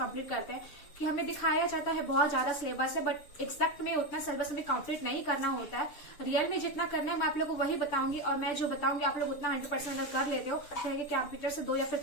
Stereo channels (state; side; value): late; right; 6.8 ms